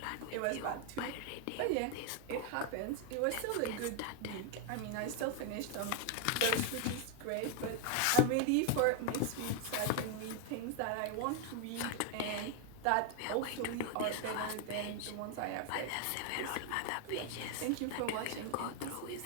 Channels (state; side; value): different; both; correlation 0.01